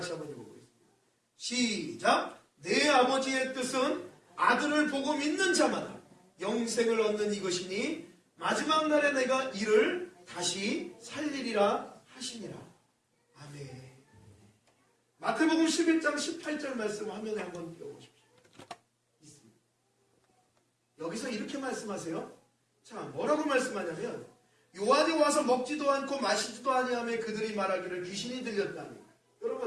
한번 읽어보겠습니다. 시작! 내 아버지의 뜻은 아들을 보고 믿는 자마다 영생을 얻는 이것이니 마지막 날에 내가 이를 다시 살리리라 하시니라. 아멘. 마태복음 11장 18절 말씀 화면에 한번 띄워보십시오. 있습니다. 여기서 이렇게 말씀하세요. 자, 뭐라고 말씀하냐면 요한이 와서 먹지도 않고 마시지도 아니하며 그들이 말하기를 귀신이 들렸다니.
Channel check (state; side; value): identical; both; correlation 1.00